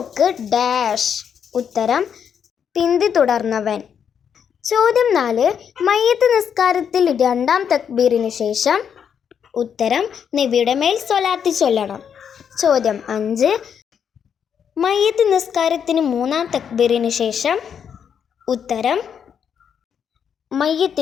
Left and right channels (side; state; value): right; quieter; 7.8 dB